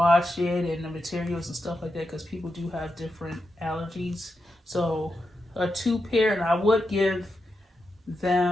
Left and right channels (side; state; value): both; normal; correlation 0.87